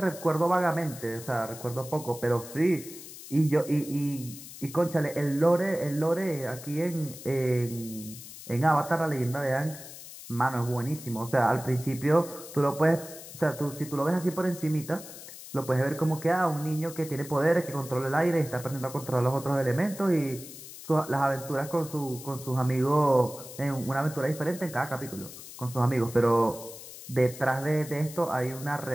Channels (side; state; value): left; noise; hiss, 14 dB below the sound